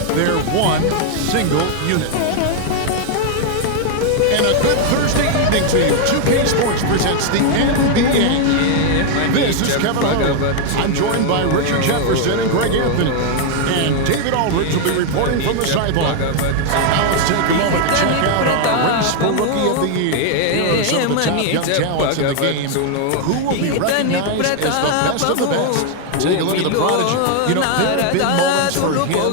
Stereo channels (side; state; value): both; different; correlation 0.00